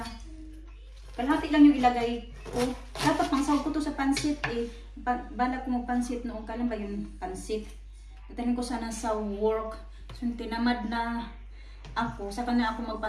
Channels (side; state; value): both; identical; correlation 1.00